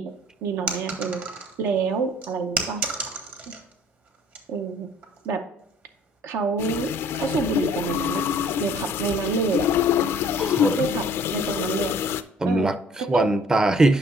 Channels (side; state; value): both; normal; correlation 0.55